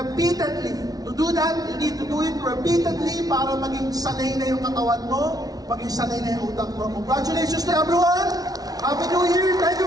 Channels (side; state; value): left; late; 0.18 ms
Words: To do that, you need to do it repeatedly para maging sanay na yung katawan mo, maging sanay na yung utak mo. Congratulations to everyone! Happy New Year! Thank